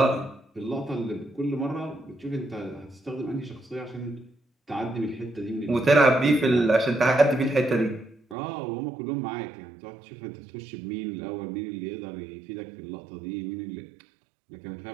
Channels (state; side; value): drops out; left; at 8.3 s